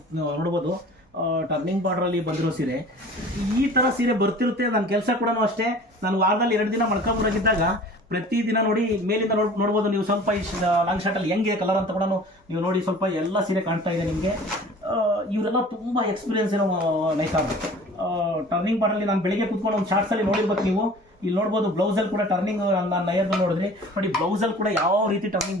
ನೋಡ್ಬೋದು. ಟರ್ನಿಂಗ್ ಬಾರ್ಡ್ರಲ್ಲಿ ಬಂದಿರೋ ಸೀರೆ ಈ ಥರ ಸೀರೆ ಬರ್ತಿರುತ್ತೆ. ನನ್ನ ಕೆಲಸ ಕೂಡ ಅಷ್ಟೇ. ನಾನು ವಾರದಲ್ಲಿ 2 ದಿನ ಮಲ್ಕೊಂಬರಾಗಿದ್ದಾಗ ಪ್ರತಿದಿನ ನೋಡಿ ಮೇಲಿಂದ ನೋಡ್ಬೋದು ನೀವು. ಸ್ವಲ್ಪ ಈ ಲಾಂಗ್ ಶಾರ್ಟಲ್ಲಿ ಹೆಂಗಿದೆ ಕಲರ್ ಅಂತ ಕೂಡ ನೀವು ನೋಡಿ. ಸ್ವಲ್ಪ ಎಲ್ಲ ಸೀರೆ ಕಾಣ್ತಾ ಇದೆ ನಿಮಗೆ. ಇವರೆಲ್ಲ ತುಂಬ ಎಕ್ಸ್ಪೀರಿಯನ್ಸ್ ಏನೋ ನೈಕಾರ್. ಟರ್ನಿಂಗ್ ಬಾರ್ಡರಲ್ಲಿ ನಾನು ಬೆಳಿಗ್ಗೆ ಕೂತ್ಕೊಂಡು ಒಂದು ಶಾರ್ಟ್ಸಲ್ಲಿ ನೋಡಿರ್ಬೇಕು ನೀವು. ಇಲ್ಲಿ ನೋಡ್ಬೋದು ಬ್ಲೌಸಲ್ಲಿ ಕೂಡ ಟರ್ನಿಂಗ್, ನಾನು ನಯರ್ದು ನೋಡಿದ್ರಿ ನೋಡಿ. ಬ್ಲೌಸಲ್ಲಿ ಕೂಡ ಯಾವ ರೀತಿ ಟರ್ನಿಂಗ್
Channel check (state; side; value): normal; both; correlation 0.45